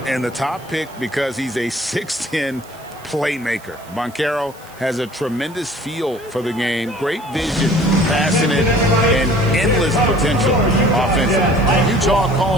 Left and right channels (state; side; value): noise; right; hiss, 23 dB below the sound